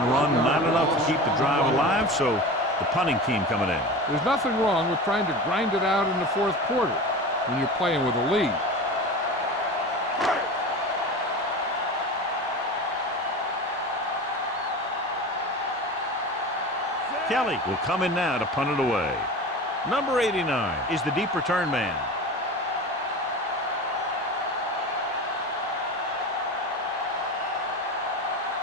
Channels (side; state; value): both; normal; correlation 0.31